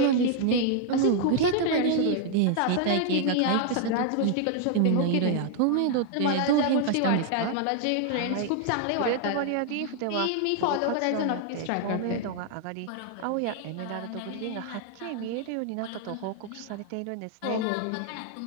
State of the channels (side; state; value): both; different; correlation 0.00